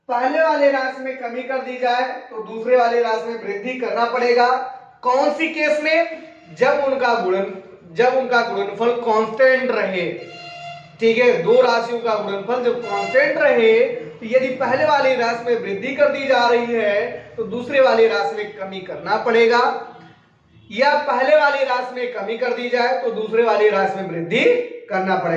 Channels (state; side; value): identical; both; correlation 1.00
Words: पहले वाले राशि में कमी कर दी जाए तो दूसरे वाले राशि में वृद्धि करना पड़ेगा। कौन सी केस में, जब उनका गुणनफल कांस्टेंट रहे, ठीक है, दो राशियों का गुणनफल जब कांस्टेंट रहे तो यदि पहले वाली राशि में वृद्धि कर दी जा रही है तो दूसरे वाली राशि में कमी करना पड़ेगा, या पहले वाली राशि में कमी कर दी जाए तो दूसरे वाली राशि में वृद्धि करना